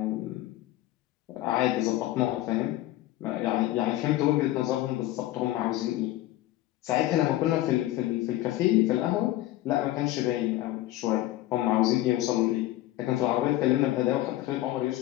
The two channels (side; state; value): right; quieter; 15.5 dB